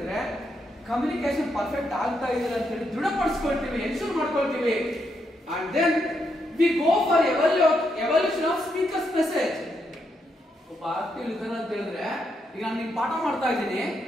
ಕಮ್ಯುನಿಕೇಶನ್ ಪರ್ಫೆಕ್ಟ್ ಆಗ್ತಾ ಇದೆ ಅಂತ ಹೇಳಿ ದೃಢಪಡಿಸ್ಕೊಳ್ತೀವಿ, ಎನ್ಶೂರ್ ಮಾಡ್ಕೊಳ್ತೀವಿ. And then we go for evaluation of speaker's message. ಒಬ್ಬ ಆಕ್ಟಿವ್ ಲಿಸನರ್ ಅಂತ ಹೇಳಿದ್ರೆ ಈಗ ನಾನು ನಿಮ್ಗೆ ಪಾಠ ಮಾಡ್ತಾ ಇದ್ದೀನಿ,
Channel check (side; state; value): both; normal; correlation 0.80